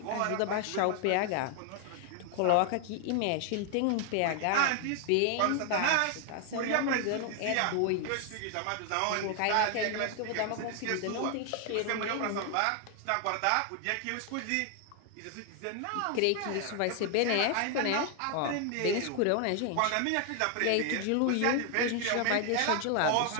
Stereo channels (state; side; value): different; both; correlation 0.00